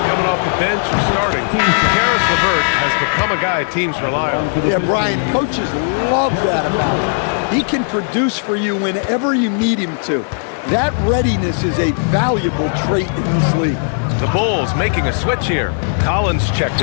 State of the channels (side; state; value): right; silent; 60 dB below the other